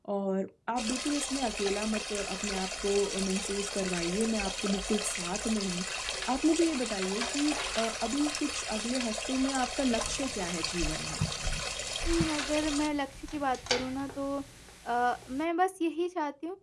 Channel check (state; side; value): identical; both; correlation 1.00